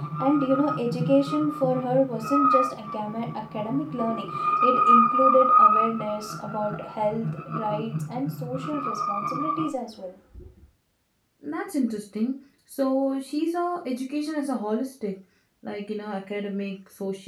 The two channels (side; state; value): both; identical; correlation 1.00